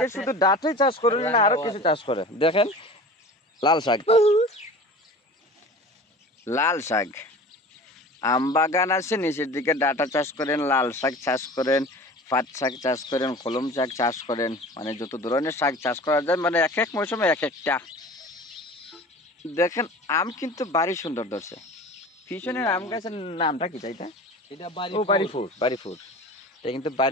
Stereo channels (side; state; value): both; normal; correlation 0.39